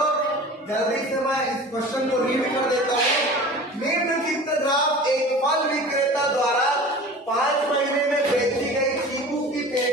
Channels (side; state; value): both; normal; correlation 0.39